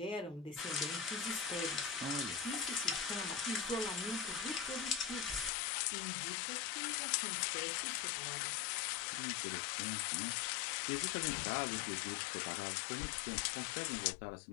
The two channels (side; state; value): right; drops out; at 5.5 s